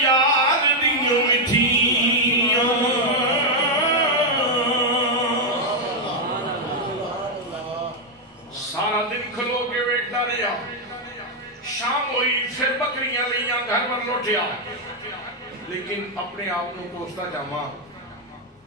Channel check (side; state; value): both; normal; correlation 0.01